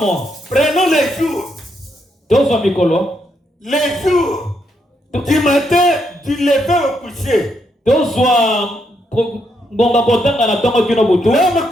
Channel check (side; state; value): both; normal; correlation 0.78